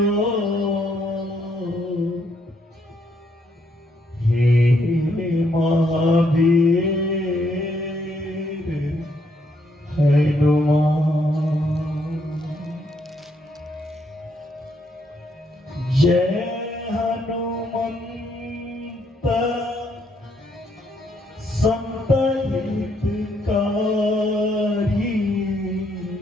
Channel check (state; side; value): normal; both; correlation 0.73